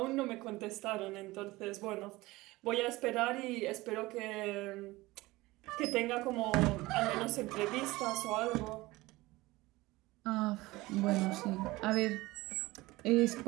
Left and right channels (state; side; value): quieter; left; 20.1 dB